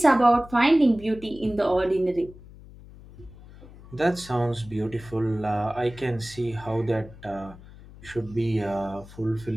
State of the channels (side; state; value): left; noise; hum, 19 dB below the sound